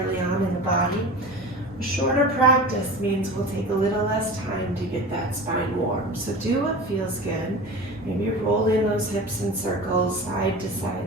on in the body. A shorter practice means we'll take a little less time to get that spine warm. So do what feels good. Maybe roll in those hips in circles, side to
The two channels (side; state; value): both; normal; correlation 0.33